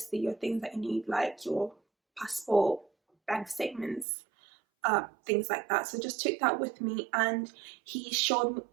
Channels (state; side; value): drops out; left; at 4.0 s